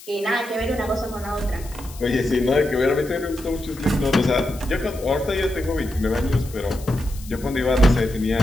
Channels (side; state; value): left; noise; hiss, 18 dB below the sound